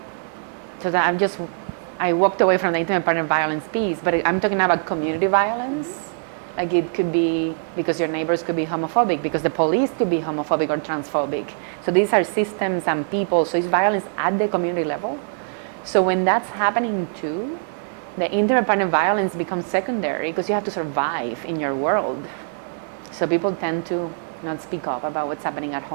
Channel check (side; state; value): left; silent; 64 dB below the other